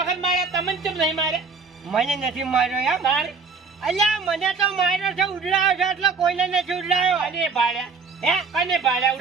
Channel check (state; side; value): quieter; left; 4.6 dB